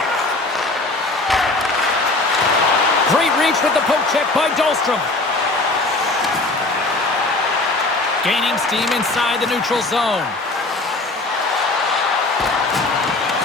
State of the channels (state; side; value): quieter; right; 3.1 dB